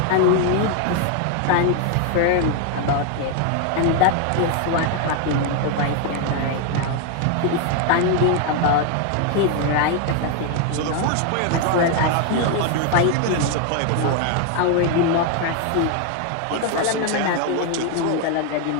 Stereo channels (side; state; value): both; different; correlation 0.01